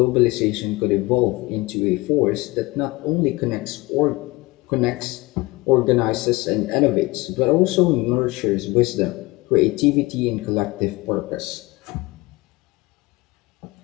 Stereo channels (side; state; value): right; quieter; 22.4 dB